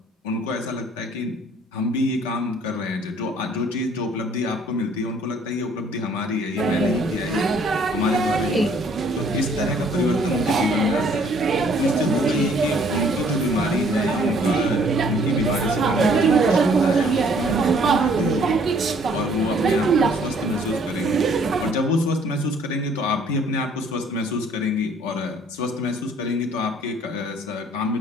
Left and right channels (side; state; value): both; normal; correlation 0.60